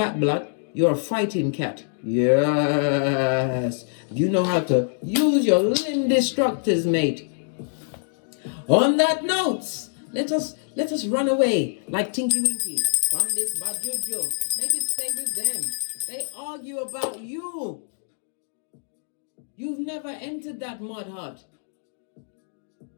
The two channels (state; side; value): silent; right; digital silence